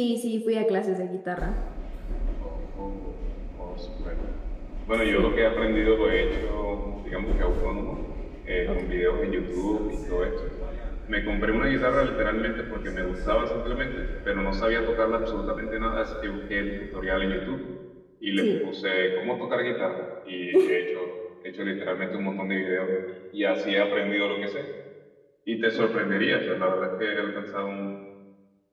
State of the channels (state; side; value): identical; both; correlation 1.00